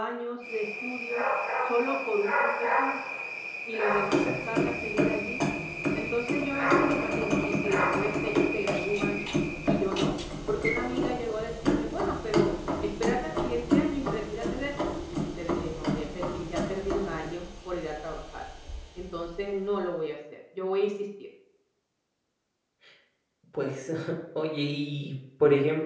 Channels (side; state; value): both; identical; correlation 1.00